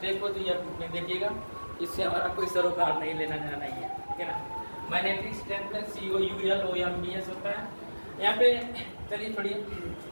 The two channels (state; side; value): inverted; both; correlation -1.00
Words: हो तो ये देखिएगा, इससे हमारा कोई सरोकार नहीं लेना देना नहीं है, ठीक है ना। मैग्नेटिक स्ट्रेंथ में COULOMBS होता है। यहाँ पे चलिए छोड़िए,